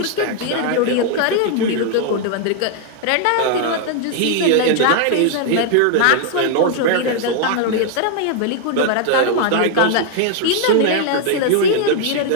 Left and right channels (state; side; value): different; both; correlation 0.00